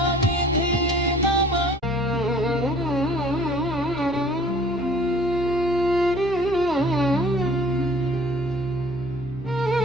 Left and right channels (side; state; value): both; normal; correlation 0.52